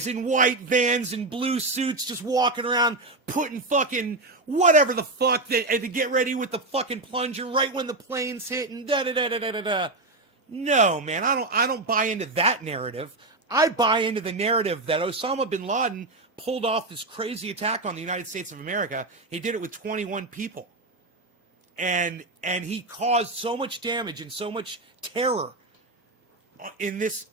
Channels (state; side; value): quieter; left; 3.1 dB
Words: in white vans and blue suits just walking around putting fucking whatever the fuck and to get ready with the fucking plunger right when the planes hit and da-da-da-da-da-da. No, man, I don't buy into that narrative. I buy into the narrative that Osama bin Laden pulled off this crazy attack on the United States of America. He did it with 21 people. And he caused so much damage and so much terror in